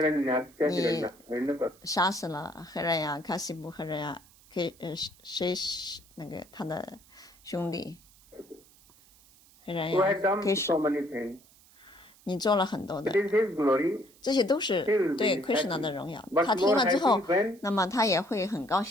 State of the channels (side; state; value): right; noise; hiss, 27 dB below the sound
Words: 你杀死了黑人呀、卡西布黑人呀，谁那个他的兄弟黑人呀，你做了很多的，这些都是对 Krishna 的荣耀。他听了之后，那么他也会很高